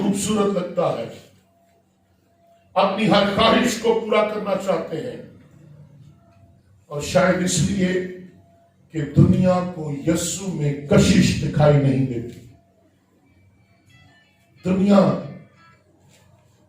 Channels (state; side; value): identical; both; correlation 1.00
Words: लगता है। अपनी हर ख्वाहिश को पूरा करना चाहते हैं, और शायद इसलिए कि दुनिया को यीशु में कशिश दिखाई नहीं देती। दुनिया